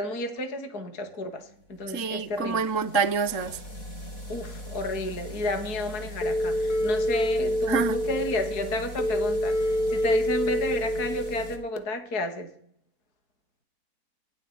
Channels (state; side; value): late; right; 4.1 ms